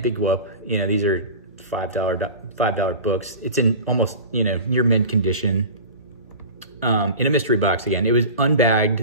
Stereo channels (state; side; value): inverted; both; correlation -0.34